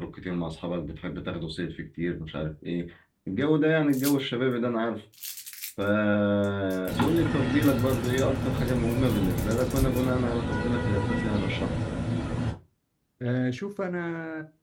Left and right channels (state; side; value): identical; both; correlation 1.00